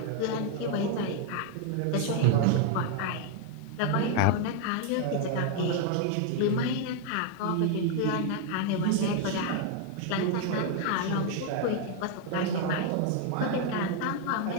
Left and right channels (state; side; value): different; both; correlation 0.00